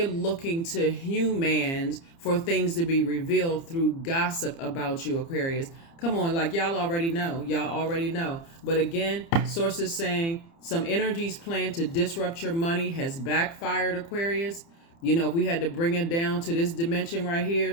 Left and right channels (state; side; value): late; right; 30 ms